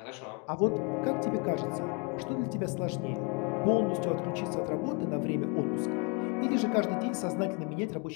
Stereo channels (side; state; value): right; quieter; 33.0 dB